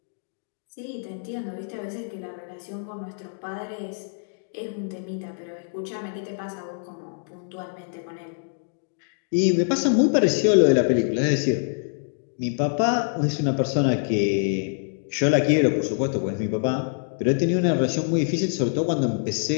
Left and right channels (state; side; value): silent; right; digital silence